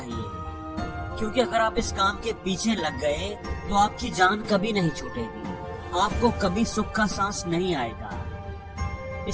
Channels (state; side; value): identical; both; correlation 1.00